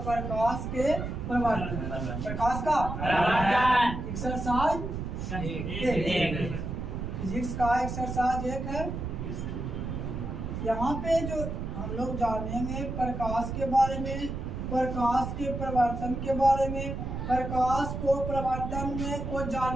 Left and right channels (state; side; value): noise; right; rumble, 5 dB below the sound